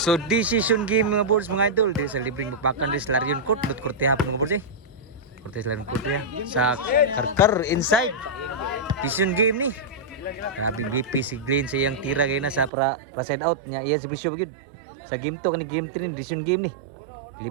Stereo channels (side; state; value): left; drops out; at 12.7 s